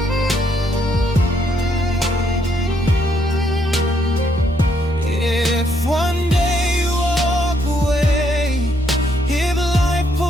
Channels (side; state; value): both; normal; correlation 0.73